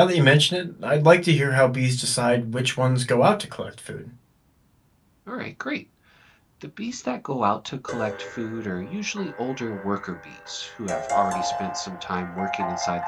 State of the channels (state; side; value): identical; both; correlation 1.00